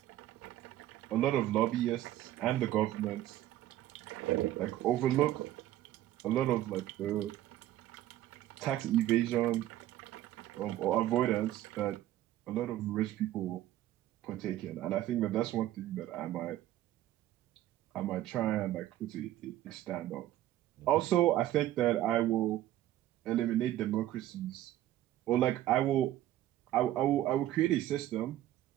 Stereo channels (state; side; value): quieter; left; 13.8 dB